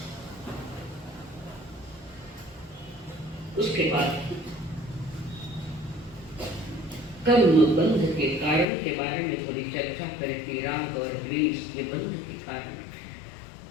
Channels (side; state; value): right; drops out; at 8.7 s